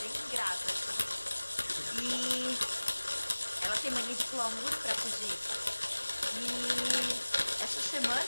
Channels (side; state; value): both; inverted; correlation -1.00